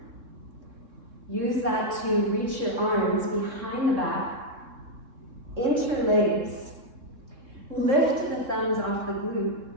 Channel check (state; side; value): late; left; 3.6 ms